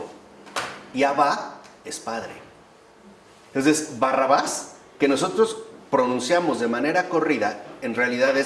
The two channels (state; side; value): identical; both; correlation 1.00